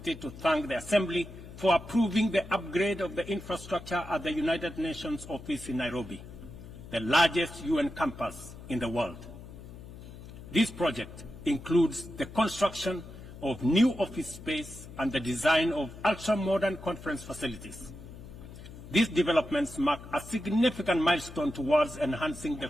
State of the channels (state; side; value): noise; left; hum, 15 dB below the sound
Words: to thank the Assembly for approving the upgrade of the infrastructure at the United Nations office in Nairobi, the largest UN campus in the world. This project includes the construction of new office space and the design of ultra-modern conference facilities. These developments mark a significant milestone towards enhancing the